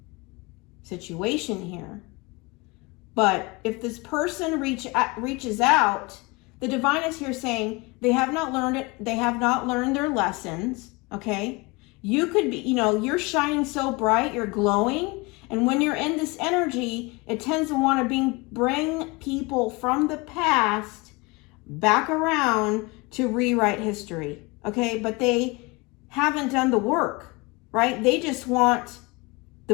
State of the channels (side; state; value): right; quieter; 26.1 dB